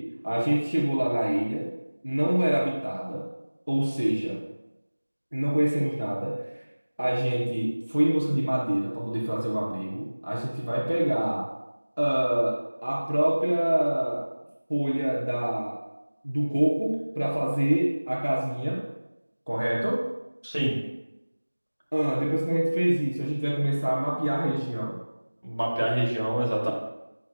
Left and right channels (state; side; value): inverted; both; correlation -1.00